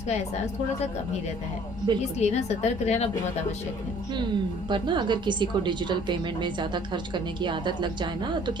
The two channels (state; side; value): normal; both; correlation 0.55